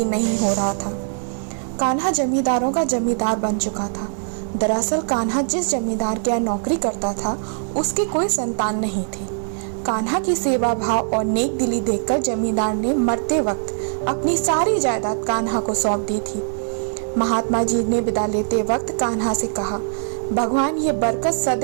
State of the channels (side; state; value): left; silent; digital silence